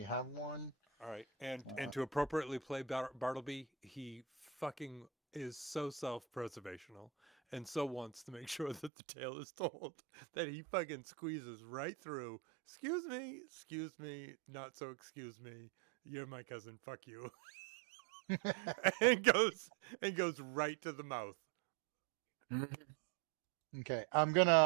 have one. All right, and to appropriately play Bartleby, he fucking is so self-preservational and so wants to make sure that the tale is told that he fucking squeezes right through. Excuse me, not so excuse me. You're my cousin. Fuck you. and goes right to the mouth. Okay, I'm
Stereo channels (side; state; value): left; drops out; at 8.9 s